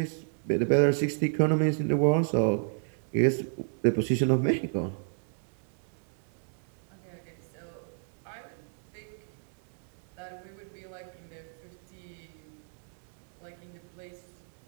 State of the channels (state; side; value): silent; left; 57 dB below the other